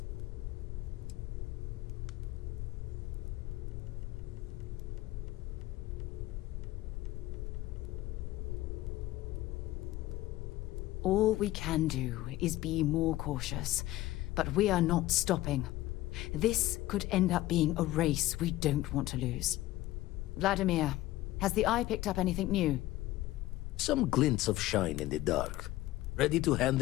All we can do is be more cautious, but we are not stopping. This could end up being a race we don't want to lose. Vladimir, has the Eye picked up anything new? Some glints of shine in the dark. Ready to hand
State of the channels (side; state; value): right; quieter; 16.5 dB